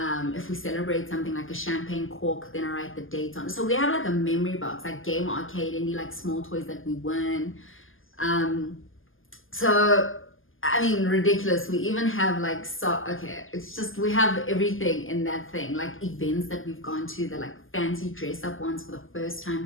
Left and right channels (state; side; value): late; right; 0.59 ms